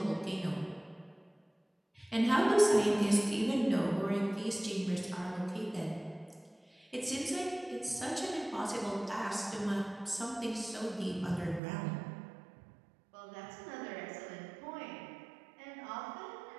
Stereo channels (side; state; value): left; drops out; at 11.6 s